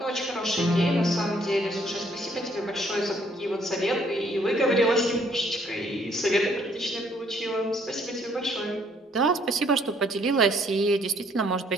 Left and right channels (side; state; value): both; normal; correlation 0.65